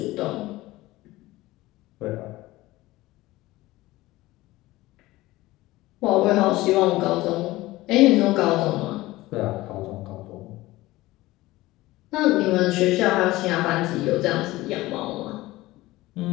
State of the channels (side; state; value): right; quieter; 18.4 dB